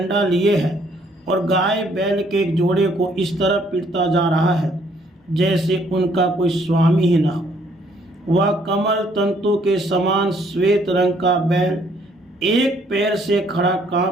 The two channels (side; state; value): both; normal; correlation 0.65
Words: लिए है और गाय बैल के एक जोड़े को इस तरह पीटता जा रहा है जैसे उनका कोई स्वामी ही ना हो। वह कमल तंतु के समान श्वेत रंग का बैल एक पैर से खड़ा